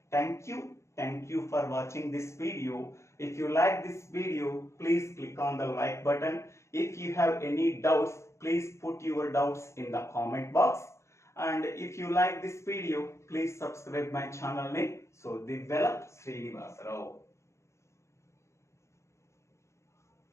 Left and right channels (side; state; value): right; late; 0.14 ms